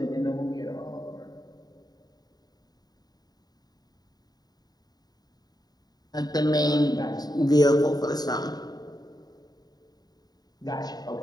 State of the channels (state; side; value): late; right; 0.19 ms